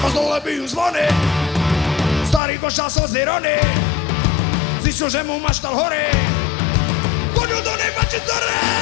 Dole bijú zvony, starý košal slzy rony. Zistil, že mu maštal horí, chodil do nej pačitore.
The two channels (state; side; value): drops out; right; at 2.4 s